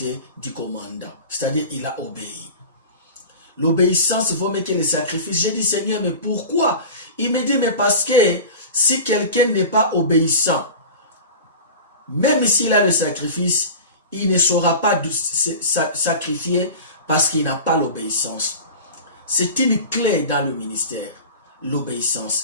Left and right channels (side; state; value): both; inverted; correlation -0.33